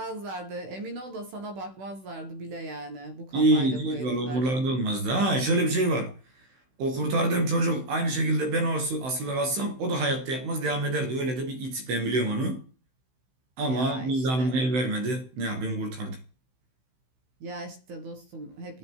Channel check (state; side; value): late; left; 16 ms